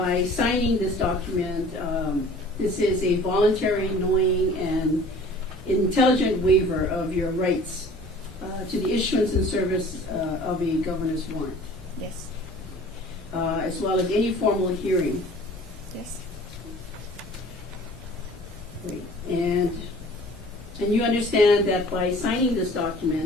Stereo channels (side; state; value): both; normal; correlation 0.48